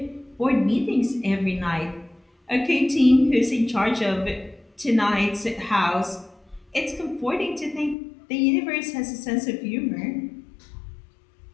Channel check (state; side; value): drops out; right; at 8.0 s